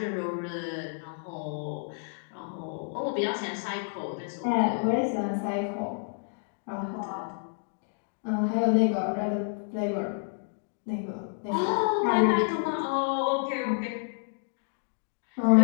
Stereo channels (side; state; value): right; silent; digital silence